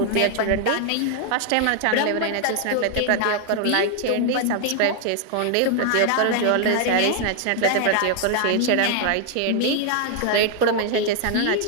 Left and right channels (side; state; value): both; different; correlation 0.00